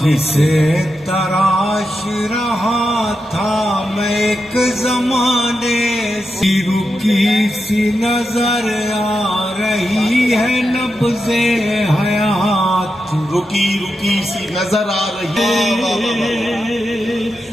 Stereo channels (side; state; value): both; normal; correlation 0.88